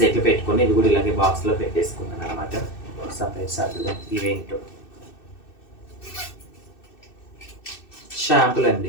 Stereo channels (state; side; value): late; right; 2.6 ms